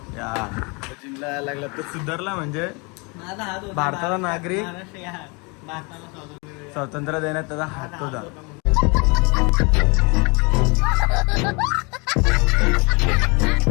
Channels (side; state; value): right; quieter; 30.3 dB